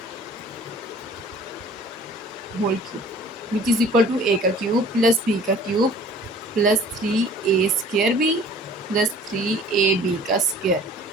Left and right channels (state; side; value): normal; both; correlation 0.49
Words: which is equal to A का क्यूब प्लस बी का cube plus 3a² B plus 3ab का स्क्वायर।